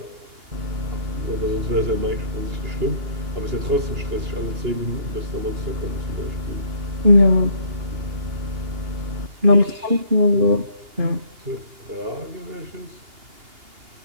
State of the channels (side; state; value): left; late; 2.8 ms